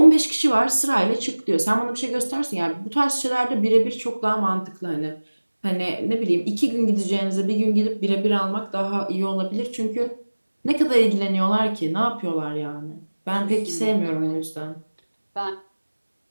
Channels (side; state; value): both; inverted; correlation -1.00